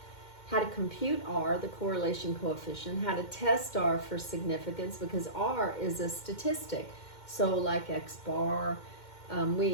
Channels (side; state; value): right; late; 2.1 ms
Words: how to compute R, the correlation coefficient, how to test R for significance, because R is a statistic. So like X bar,